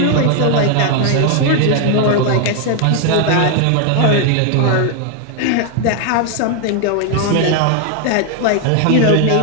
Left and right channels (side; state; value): both; different; correlation 0.00